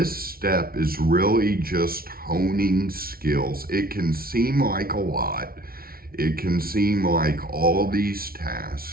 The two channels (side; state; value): left; late; 0.43 ms